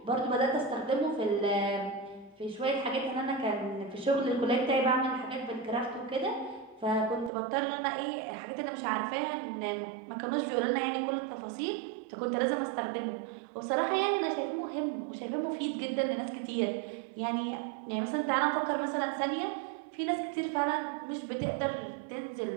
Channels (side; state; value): left; drops out; at 7.3 s